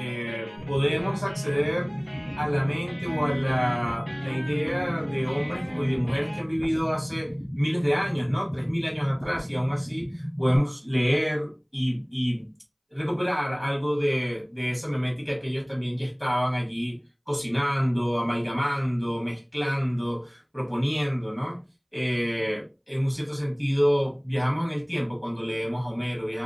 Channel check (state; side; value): identical; both; correlation 1.00